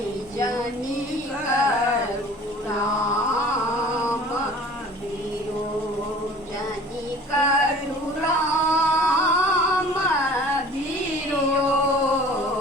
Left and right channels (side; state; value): both; normal; correlation 0.46